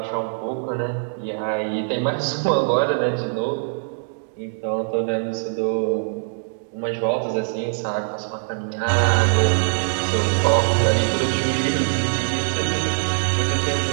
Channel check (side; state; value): left; silent; digital silence